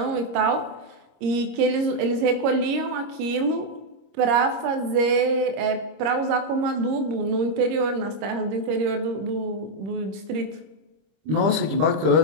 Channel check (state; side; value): late; left; 26 ms